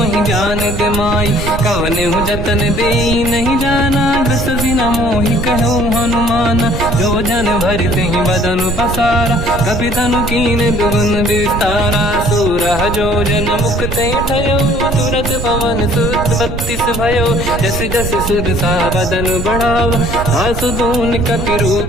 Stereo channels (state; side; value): noise; right; rumble, 5 dB below the sound